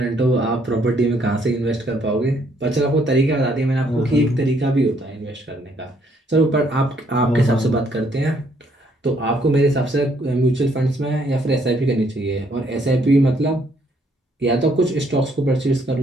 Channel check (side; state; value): both; normal; correlation 0.68